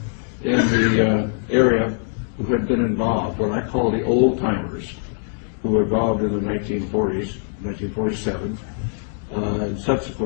in the area who had been involved, what I call the old-timers, who were involved in the 1940s, 1947, and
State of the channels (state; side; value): silent; right; 64 dB below the other